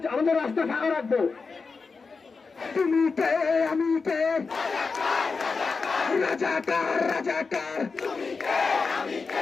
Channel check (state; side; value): quieter; right; 4.6 dB